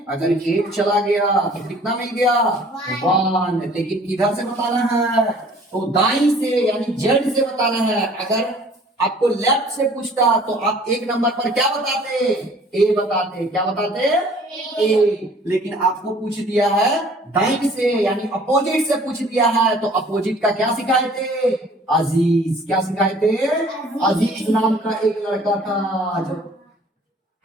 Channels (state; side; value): normal; both; correlation 0.53